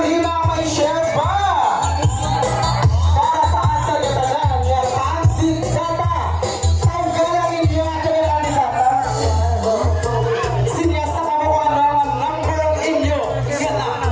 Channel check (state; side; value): identical; both; correlation 1.00